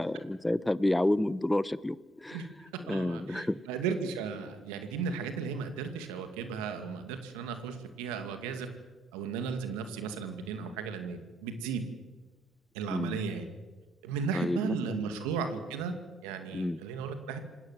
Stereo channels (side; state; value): both; normal; correlation 0.71